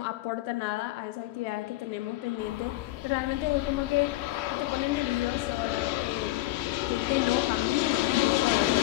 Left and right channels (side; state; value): right; quieter; 17.3 dB